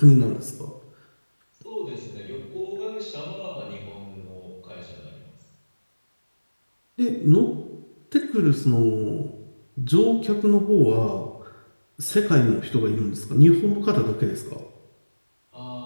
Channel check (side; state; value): both; inverted; correlation -1.00